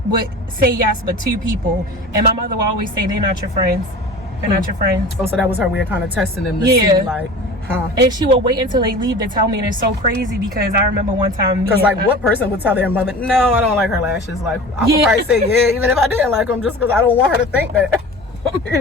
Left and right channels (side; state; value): both; normal; correlation 0.37